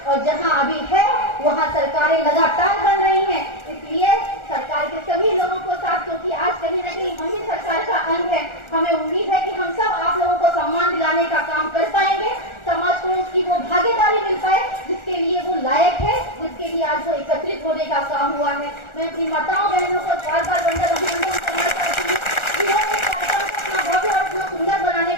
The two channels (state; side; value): late; right; 1.4 ms